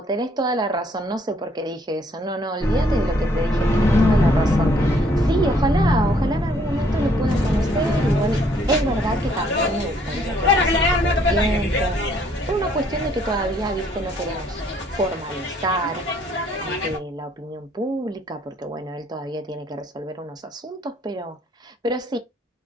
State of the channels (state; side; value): normal; both; correlation 0.65